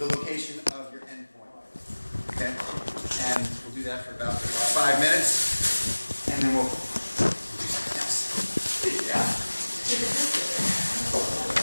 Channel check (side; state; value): both; inverted; correlation -1.00